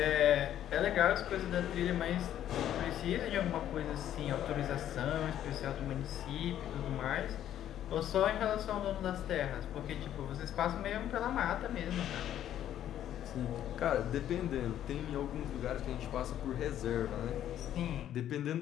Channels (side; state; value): right; quieter; 11.2 dB